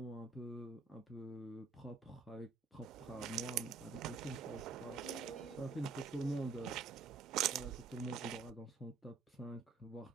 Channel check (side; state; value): left; quieter; 4.9 dB